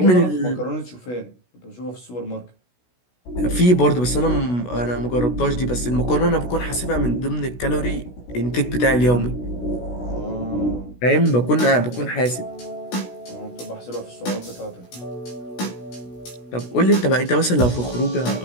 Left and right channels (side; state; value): right; late; 16 ms